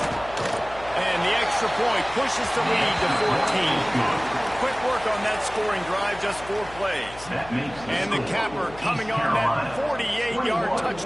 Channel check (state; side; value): noise; left; hum, 18 dB below the sound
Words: And the extra point pushes the lead to 14. Quick work on that scoring drive, just 4 plays. And the capper coming on that 48-yard